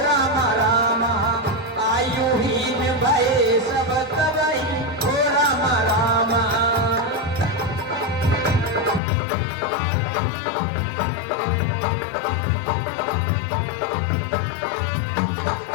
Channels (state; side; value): drops out; right; at 9.0 s